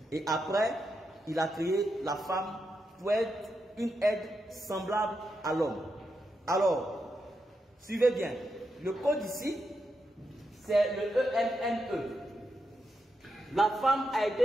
Et après, il a créé la femme pour être une aide semblable à l'homme. Alors, suivez bien. Le code ici, c'est le E-M-N-E. La femme a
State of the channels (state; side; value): normal; both; correlation 0.85